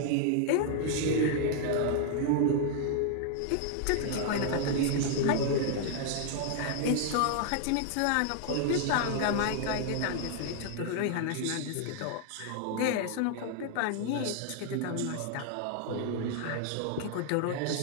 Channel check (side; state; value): both; different; correlation 0.00